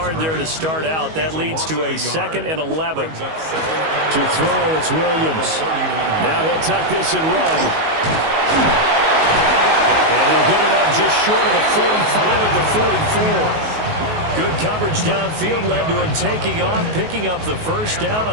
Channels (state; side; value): late; left; 19 ms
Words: there to start out. That leads to a 2nd and 11. To throw, it's Williams. Now he'll tuck this and run. And he'll get it up just short of the 45 at the 44. Good coverage downfield led to him taking off, picking up the first down